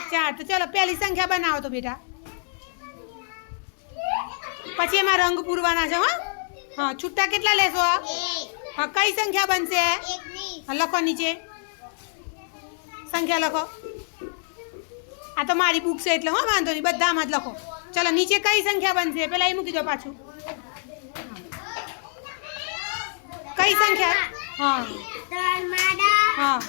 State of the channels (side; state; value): right; silent; digital silence